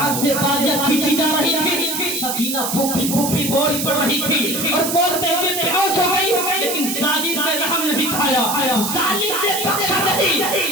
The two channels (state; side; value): noise; right; hiss, 3 dB below the sound